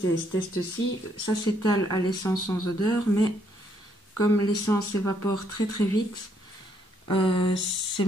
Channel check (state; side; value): normal; both; correlation 0.71